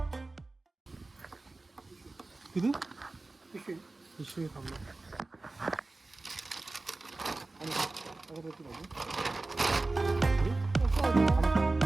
किती पिशवी थांबलो.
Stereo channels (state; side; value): quieter; left; 3.2 dB